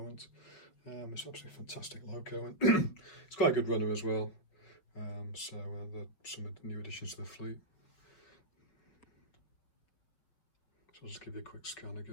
It's absolutely fantastic loco, and it's quite a good runner as well. So some of the new additions to the fleet. So I'll just give you a quick scan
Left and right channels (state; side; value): late; right; 5.7 ms